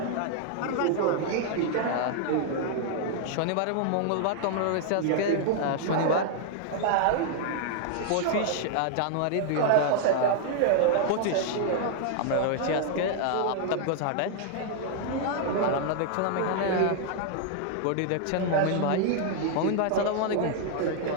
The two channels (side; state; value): both; different; correlation 0.00